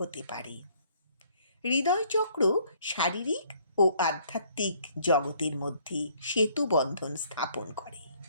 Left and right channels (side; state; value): both; inverted; correlation -0.62